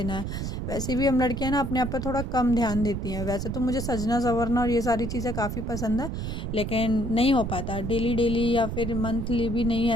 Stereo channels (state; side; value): noise; right; rumble, 4 dB below the sound